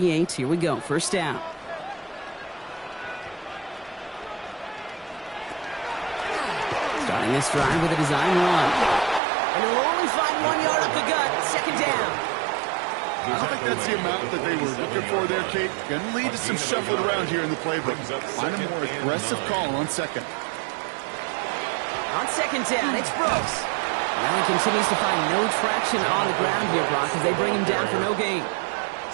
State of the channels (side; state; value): left; drops out; at 9.2 s